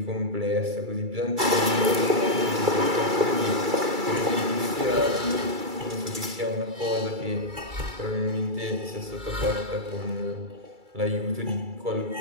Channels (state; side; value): late; left; 2.3 ms